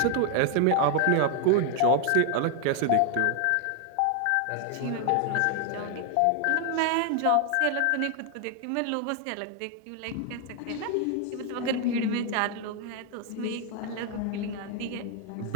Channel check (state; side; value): different; both; correlation 0.00